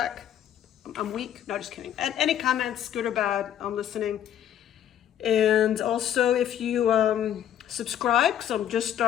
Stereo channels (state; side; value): quieter; right; 10.5 dB